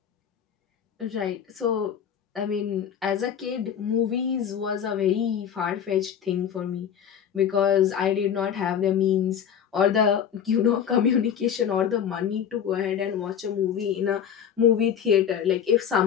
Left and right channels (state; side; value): quieter; right; 8.4 dB